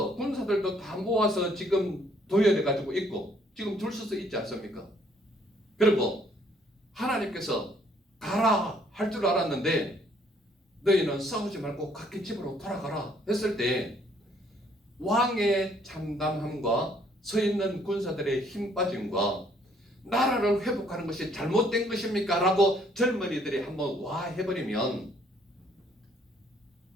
군사들도 다 모아서 지금 도열해 가지고 있고 지금 줄 서서 있지 않습니까? 그리고 하나님께서 가라 할 줄 알았는데 너희는 싸우지 말고 각기 집으로 돌아가라 했을 때 왕의 참담함과 서 있는 군사들의 힘 빠짐과 나라를 회복하는 것이 잘못된 것입니까? 라고 젊은이들이 한번 와 해버리면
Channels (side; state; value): both; normal; correlation 0.64